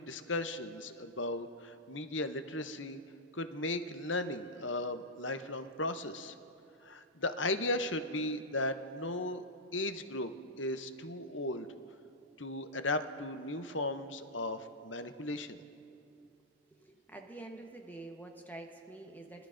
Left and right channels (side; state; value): both; normal; correlation -0.09